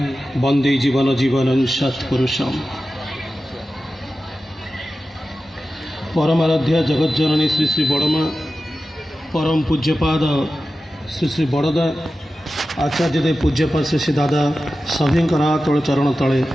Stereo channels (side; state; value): both; normal; correlation 0.93